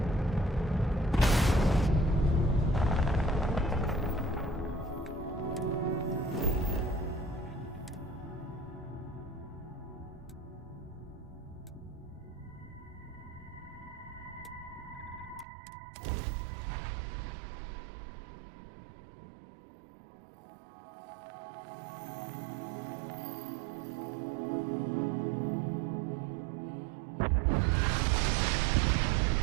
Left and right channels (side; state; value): left; drops out; at 15.5 s